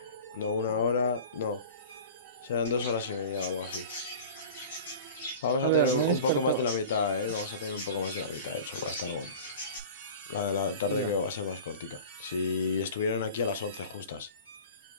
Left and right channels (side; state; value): both; inverted; correlation -0.37